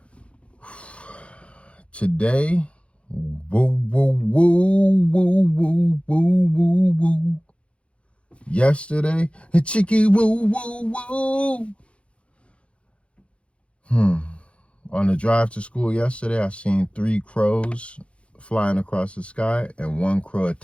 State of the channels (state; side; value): late; right; 0.060 ms